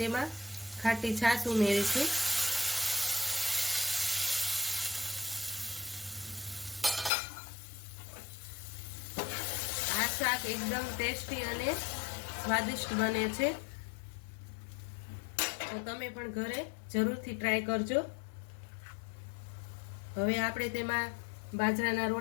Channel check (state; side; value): drops out; right; at 7.1 s